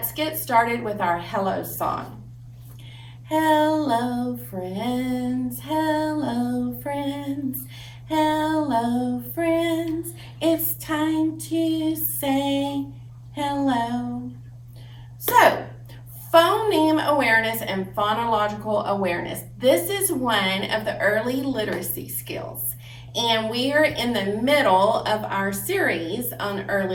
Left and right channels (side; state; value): both; identical; correlation 1.00